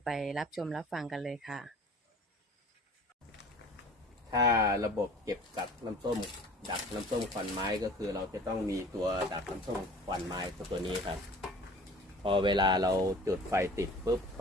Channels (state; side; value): normal; both; correlation 0.46